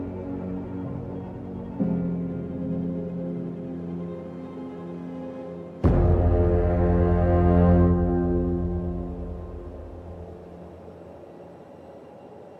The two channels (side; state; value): both; identical; correlation 1.00